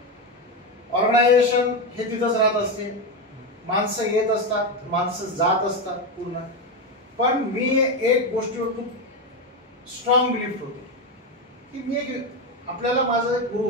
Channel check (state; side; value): normal; both; correlation 0.12